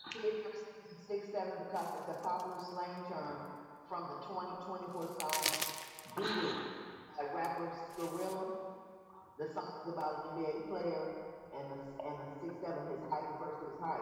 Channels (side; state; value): both; identical; correlation 1.00